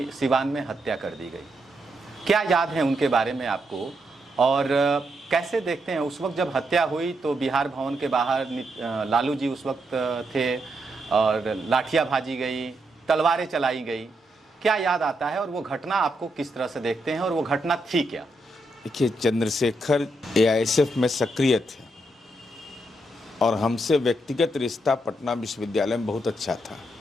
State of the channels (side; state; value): both; normal; correlation 0.81